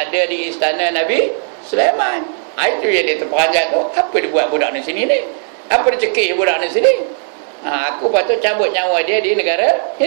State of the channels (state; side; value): silent; left; 65 dB below the other